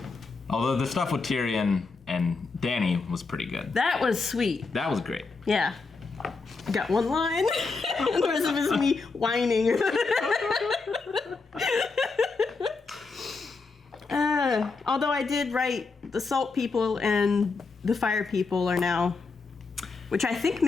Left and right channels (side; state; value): right; quieter; 4.2 dB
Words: Although the stuff with Tyrion and Dany was pretty good. That was sweet. That was great. Yeah. I got one line. The rest of it is me whining. Although I did write the salt people and the fire people are now, which I think